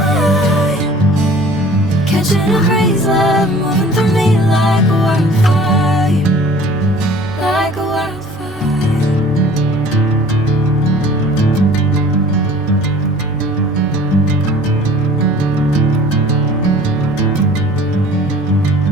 Catching a crazy love, moving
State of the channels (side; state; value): left; noise; rumble, 21 dB below the sound